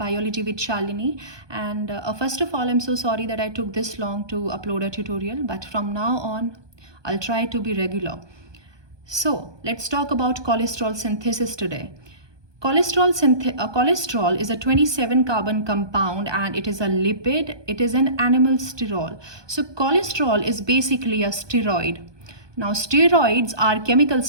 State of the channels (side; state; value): left; late; 1.2 ms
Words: with Shalini. And first of all, I'm so sorry that I took this long to upload a tutorial, but from now on, I'll try to be regular. So let's talk about cholesterol synthesis today. Cholesterol is a 27 carbon compound and it is a lipid. It is an animal sterol. So cholesterol is basically a steroid. Now steroids are chemical